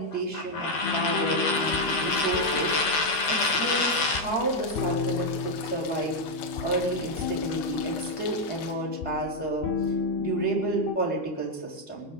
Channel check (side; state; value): right; late; 13 ms